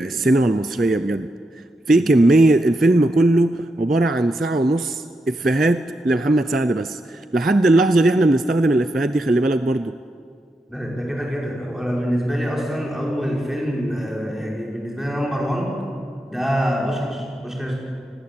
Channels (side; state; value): both; normal; correlation 0.84